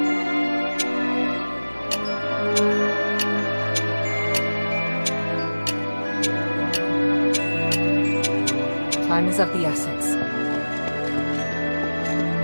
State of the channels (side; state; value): both; inverted; correlation -1.00